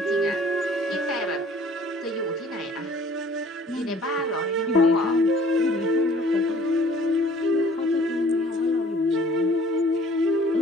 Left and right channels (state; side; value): normal; both; correlation 0.53